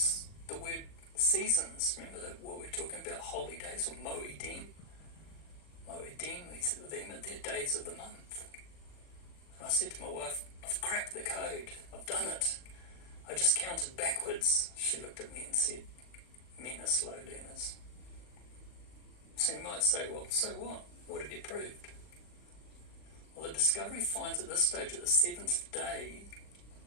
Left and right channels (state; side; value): late; right; 39 ms